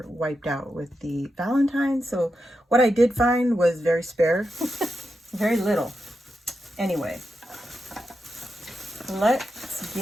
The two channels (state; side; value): normal; both; correlation 0.88